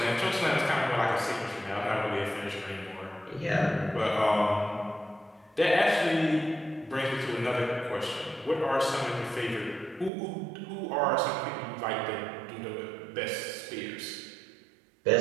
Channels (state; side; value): drops out; left; at 10.1 s